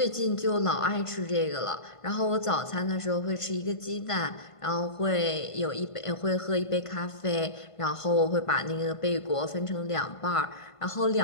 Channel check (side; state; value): right; late; 1.5 ms